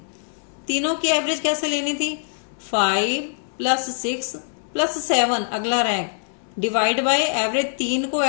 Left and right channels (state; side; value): silent; right; 63 dB below the other